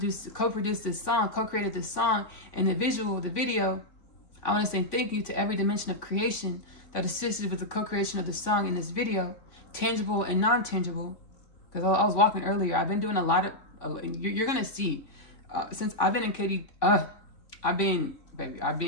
this song, co-created this song, and the video, I want to say thank you to every dimension of creation that assisted with the co-creation of the song in this video, tangible and non-tangible. Because I was walking earlier, I've been doing a lot of, you're going to see, since I've been in Katy, I've been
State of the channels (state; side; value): late; right; 3.5 ms